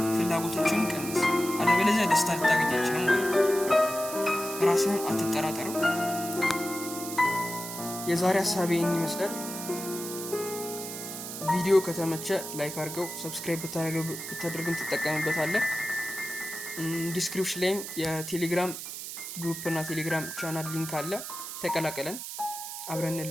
ፍላጎቶችን ቀንስ። አለበለዚያ ደስታ ልታገኝ አትችልም ማለት ነው። ራስህን አትጠራጠረው። የዛሬ ሀሳቤ ይህን ይመስላል። ቪዲዮ ከተመቸ ላይክ አድርገው፣ ሰብስክራይብ ብታደርግም ትጠቀምበታለህ። ዲስክሪፕሽን ላይም የቴሌግራም ግሩፕ እና ቴሌግራም ቻናል ሊንክ አለ፣ ተቀላቀለን፣ አብረን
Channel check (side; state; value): right; noise; hiss, 8 dB below the sound